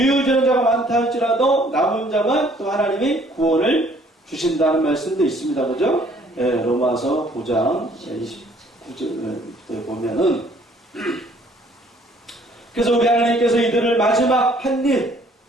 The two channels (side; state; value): both; normal; correlation 0.60